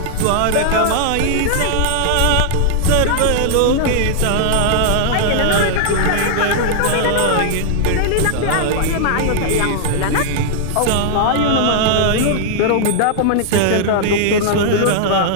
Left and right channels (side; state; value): both; different; correlation 0.00